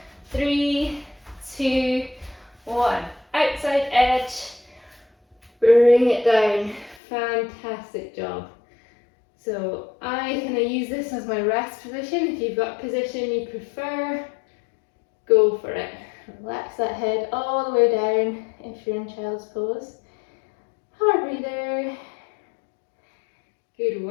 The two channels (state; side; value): drops out; right; at 7.0 s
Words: 3, 2, 1. Outside edge. Bring it down. Fantastic job. So I kind of use this as my rest position. If you've got a position you prefer, go for it. Relax that head all the way down if you're in child's pose. Hard breather. Good